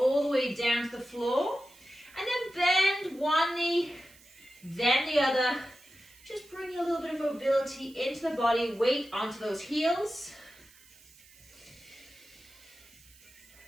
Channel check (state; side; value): noise; right; hiss, 25 dB below the sound